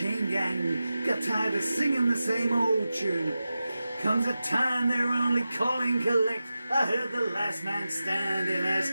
gang got tired of singing the same old tune. Comes a time they're only calling collect. I heard the last man standing ask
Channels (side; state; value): both; inverted; correlation -0.93